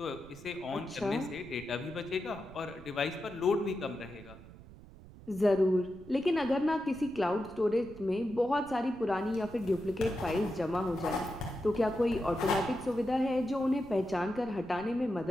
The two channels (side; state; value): right; noise; rumble, 18 dB below the sound